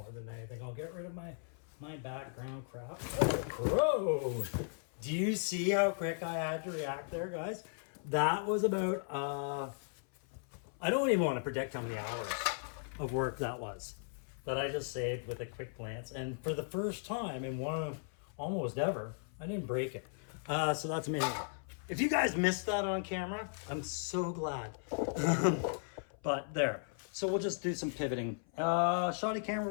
than anything. I'll get rid of my background crap. Oh, crow! Do you see how quick I had to react there, guys? That was about, I don't even want to predict how many hours of work that was that I just saved with a quick glance. And for the first time in one of almost ever, I didn't break it. So that's amazing. If you guys missed that on camera, I'm so glad. But there. So we'll just do some pivoting. Shoddy camera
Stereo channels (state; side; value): silent; right; 53 dB below the other